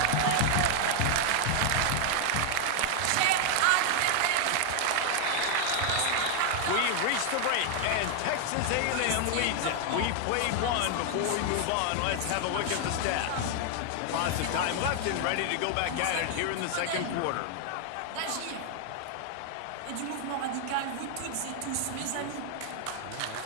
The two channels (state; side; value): different; both; correlation 0.00